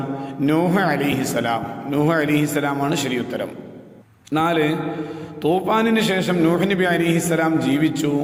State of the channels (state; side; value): identical; both; correlation 1.00